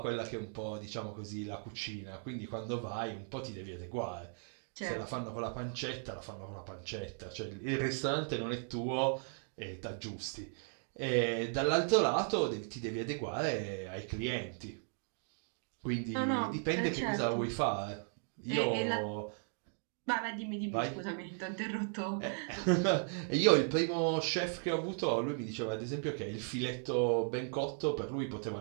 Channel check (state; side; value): silent; left; 53 dB below the other